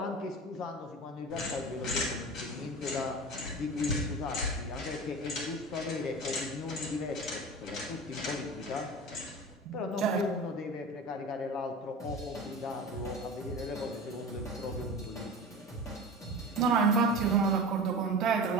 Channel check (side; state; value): both; normal; correlation 0.32